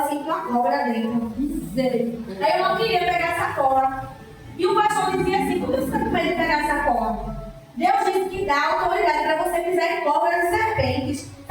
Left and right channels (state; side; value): identical; both; correlation 1.00